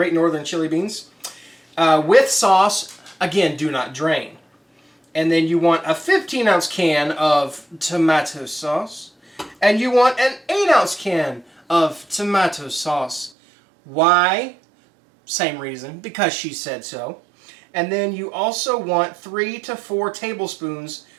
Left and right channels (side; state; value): left; drops out; at 13.3 s